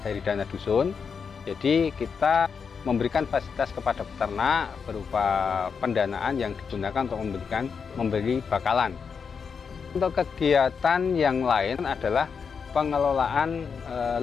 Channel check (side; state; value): right; quieter; 6.0 dB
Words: dari dana dusun. Jadi kita memberikan fasilitas kepada peternak berupa pendanaan yang digunakan untuk membeli bakalan. Untuk kegiatan yang lain adalah pengelolaan